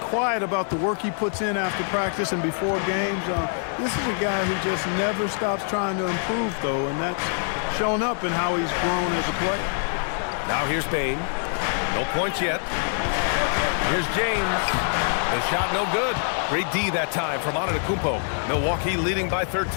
about the work he puts in after practice and before games. This is a guy who just never stops trying to improve, though, and that's shown up in how he's grown as a player. Now here's Bain. No points yet. Here's James. The shot no good. Great D that time from Antetokounmpo. Milwaukee leading by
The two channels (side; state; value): right; silent; 62 dB below the other